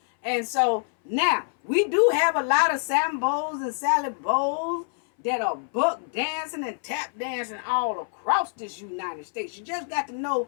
And so now we do have a lot of Sambos and Sally Bows that are buck dancing and tap dancing all across this United States. You just got to know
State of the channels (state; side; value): silent; right; 61 dB below the other